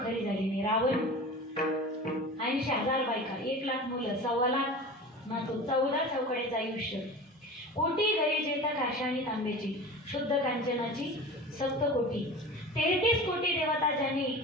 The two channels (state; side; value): normal; both; correlation 0.34